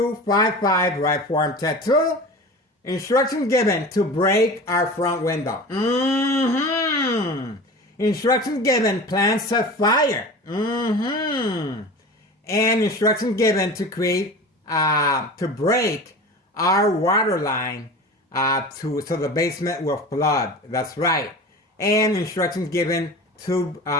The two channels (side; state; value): both; normal; correlation 0.34